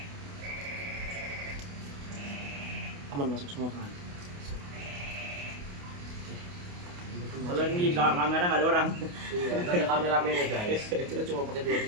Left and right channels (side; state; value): left; late; 28 ms